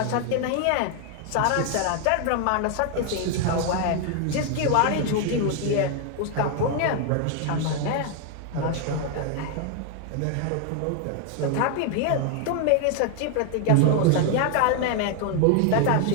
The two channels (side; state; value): both; different; correlation 0.00